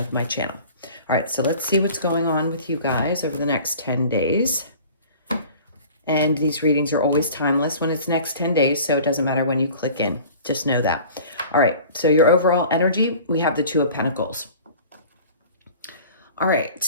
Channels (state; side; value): inverted; both; correlation -0.44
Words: my channel. All right, so let's see what's going on with you guys over the next 10 days. And these readings are always timeless when it's next 10 days, so it doesn't matter when you click in. Just know that. All right, so your overall energy, we have the Two of Pentacles. All right,